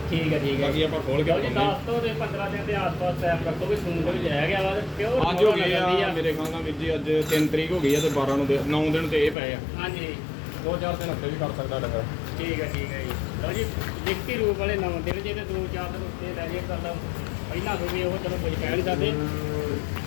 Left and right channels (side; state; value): right; drops out; at 9.3 s